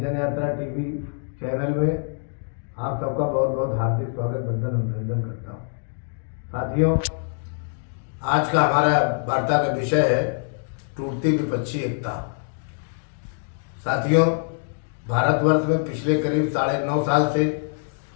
टीवी चैनल में आप सबका बहुत बहुत हार्दिक स्वागत, वंदन अभिनंदन करता हूँ। साथियों, आज का हमारा वार्ता का विषय है टूटती विपक्षी एकता। साथियों, भारतवर्ष में पिछले करीब 9.5 साल से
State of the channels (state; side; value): silent; right; 62 dB below the other